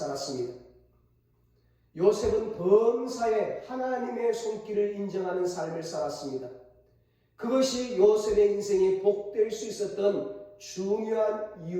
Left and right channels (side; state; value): both; identical; correlation 1.00